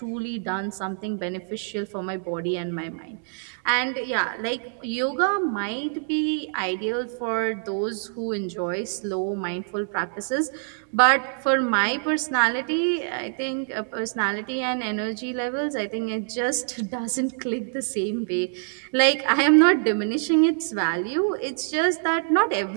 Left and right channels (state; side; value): silent; left; digital silence